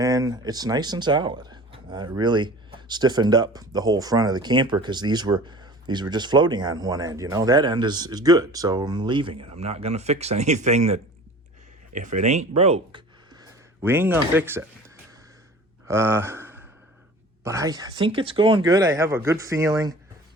it's nice and solid. It really stiffened up the whole front of the camper because these were just floating on one end. You know, that end is good, so I'm leaving it. I'm not gonna fix anything that, if it ain't broke, we ain't gonna fix it. But I think it's going good. I have a good feeling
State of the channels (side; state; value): both; normal; correlation 0.42